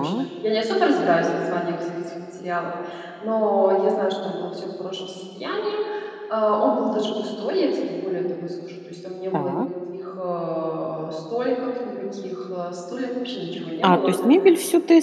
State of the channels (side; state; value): both; identical; correlation 1.00